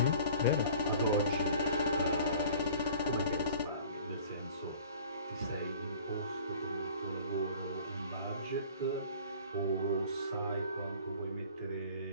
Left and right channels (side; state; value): both; inverted; correlation -0.47